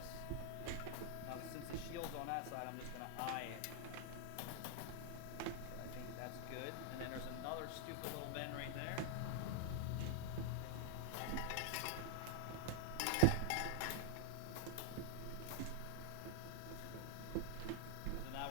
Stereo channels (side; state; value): both; different; correlation 0.00